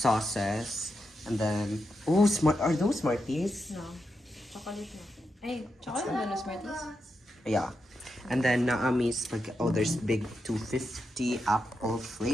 and then smart. Are those Smarties? No. Chocolate na. Ay, chocolate na no Smarties? Yeah. And then Naami's there's big 250 apple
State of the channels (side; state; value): both; normal; correlation 0.86